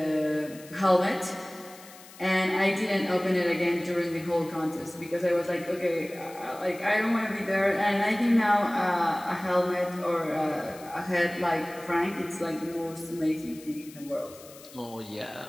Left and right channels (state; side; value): noise; left; hiss, 20 dB below the sound